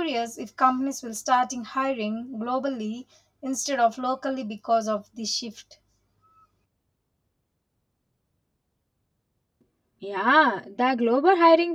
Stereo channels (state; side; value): identical; both; correlation 1.00